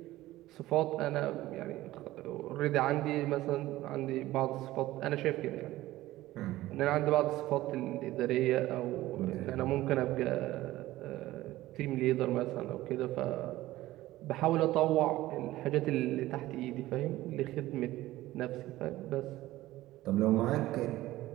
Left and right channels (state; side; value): quieter; left; 16.4 dB